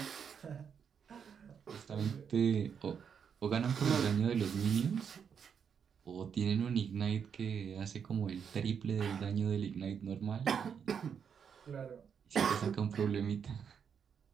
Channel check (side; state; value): left; quieter; 7.2 dB